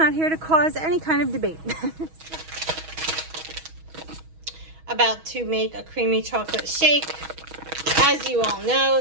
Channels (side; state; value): left; late; 6.2 ms